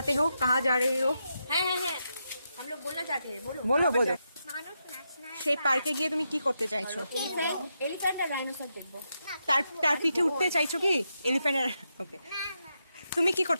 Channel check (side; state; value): both; inverted; correlation -0.84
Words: हो, कहाँ जा रहे हो? হ্যাঁ हम लोग बोलना चाहते हैं बोलो বলো বলো। মানুষ ন্যাশনাল সেই পার্কে গিয়ে তুমি কি করতে চাইছো? এলিফ্যান্ট আর ডাইনোসর দেখবো তার তার পিঠে উঠতে চাইছো কি? এলিফ্যান্টের। ওকে, তুমি কি